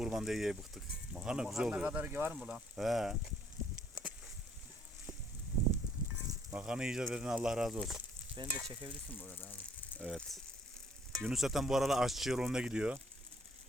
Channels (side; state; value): both; normal; correlation 0.62